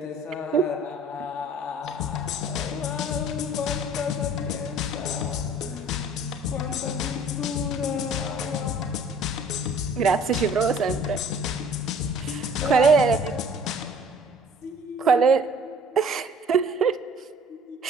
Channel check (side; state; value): both; normal; correlation 0.52